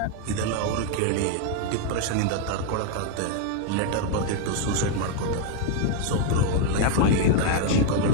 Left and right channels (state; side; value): different; both; correlation 0.01